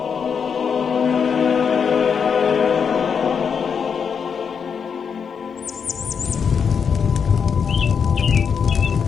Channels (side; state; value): right; quieter; 6.6 dB